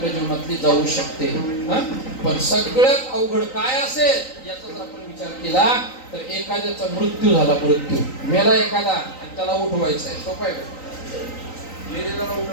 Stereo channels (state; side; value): late; right; 3.9 ms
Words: जीवनातली जाऊ शकते. पण सगळ्यात अवघड काय असेल याचा जर आपण विचार केला तर एखाद्याचा मृत्यू झाला, मृत्यू मेला एखादा आणि त्याला उठवायचं आहे. सोपं आहे का? मेलेल्याला